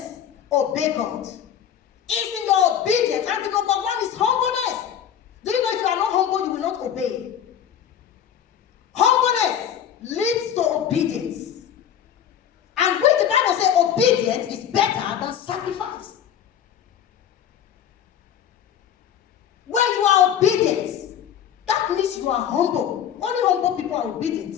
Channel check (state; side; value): quieter; right; 9.3 dB